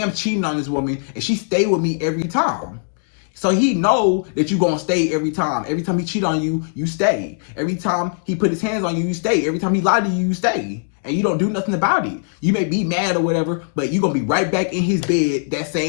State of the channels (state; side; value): silent; right; digital silence